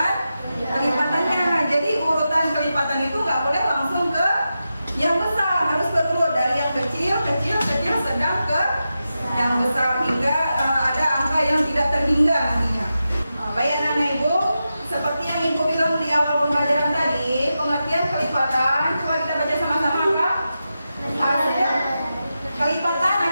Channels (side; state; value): both; inverted; correlation -0.90